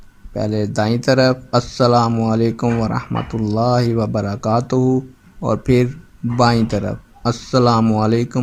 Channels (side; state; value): both; identical; correlation 1.00